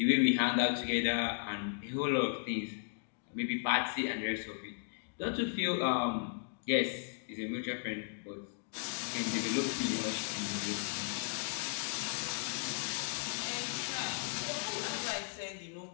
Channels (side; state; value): right; silent; digital silence